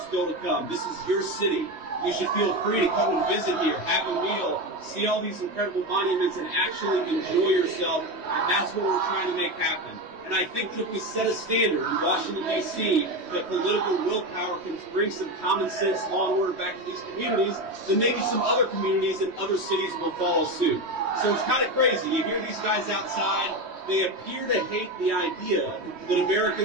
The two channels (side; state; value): left; late; 3.1 ms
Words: still to come. This is your city. You should feel free to come and visit here, have a meal, see all these incredible monuments, and actually enjoy yourself. And that's what we're trying to make happen. And I think that if we set a standard in Washington, D.C., that political willpower can bring some common sense law and order back to these communities, then maybe some other communities and other cities will follow suit. So it's kind of crazy. You hear these guys outside. They appear to hate the idea that